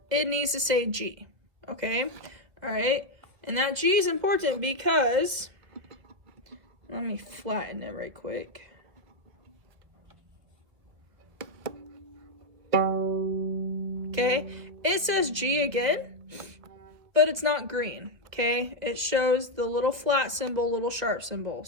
It needs to say G, okay? All right? And that G is important because, let me flatten it right quick. Okay? It says G again, but it's not green, okay? It shows the little flat symbol, little sharp symbol.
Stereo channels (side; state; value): left; late; 2.0 ms